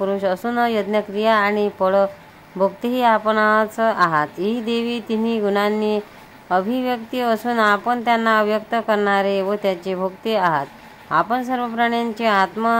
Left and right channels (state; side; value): identical; both; correlation 1.00